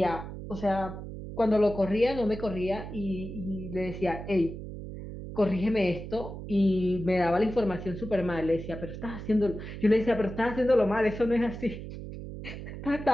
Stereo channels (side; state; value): right; noise; hum, 9 dB below the sound